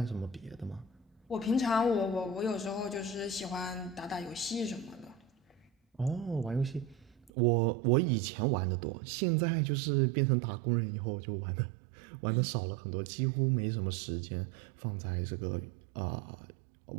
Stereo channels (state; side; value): drops out; left; at 7.3 s